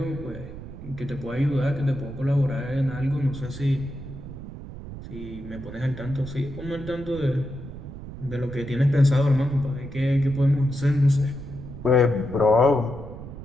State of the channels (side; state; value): right; noise; rumble, 12 dB below the sound